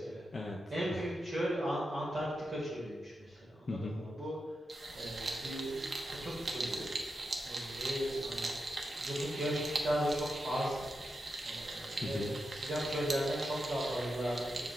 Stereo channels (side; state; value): both; normal; correlation 0.88